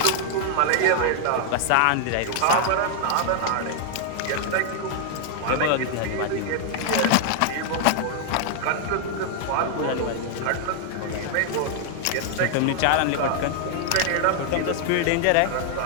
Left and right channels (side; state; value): both; different; correlation 0.00